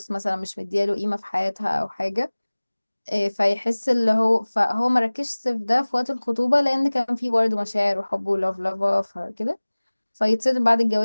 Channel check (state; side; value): inverted; both; correlation -1.00